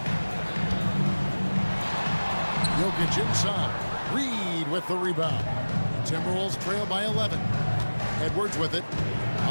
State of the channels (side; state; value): both; inverted; correlation -1.00